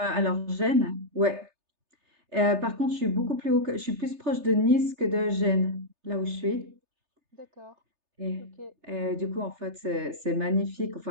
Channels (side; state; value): left; late; 3.3 ms